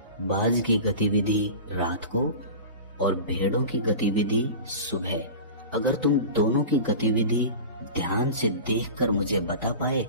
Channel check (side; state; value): both; inverted; correlation -0.32